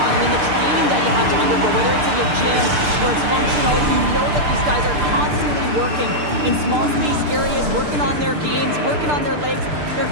I mean, the training that you have to undergo, whether it's in the gym or it's functional, you know that these guys are constantly working in small space areas, working on their games, working on their legs. Their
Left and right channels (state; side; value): late; left; 6.7 ms